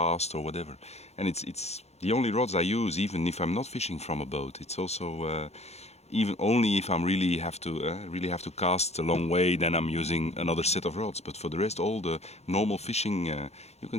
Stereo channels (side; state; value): right; late; 0.31 ms